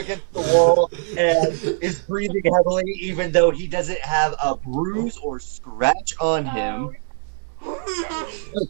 the wall and is breathing heavily, even though he doesn't have a bruise or scratch on him.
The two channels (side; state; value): left; silent; 64 dB below the other